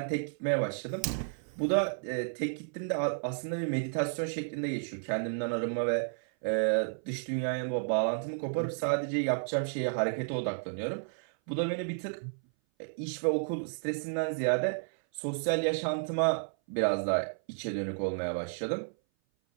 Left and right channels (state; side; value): silent; left; 56 dB below the other